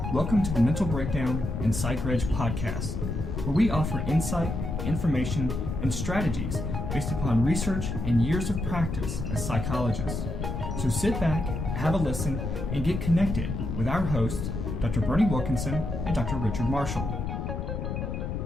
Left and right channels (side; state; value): left; noise; rumble, 3 dB below the sound